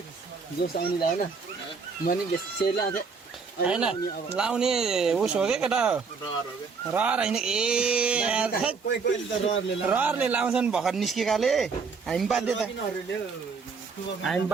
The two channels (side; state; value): left; quieter; 5.1 dB